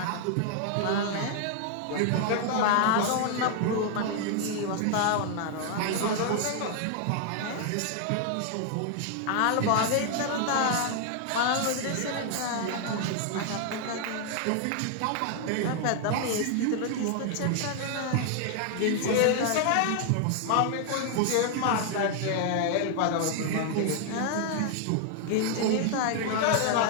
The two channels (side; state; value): both; different; correlation 0.00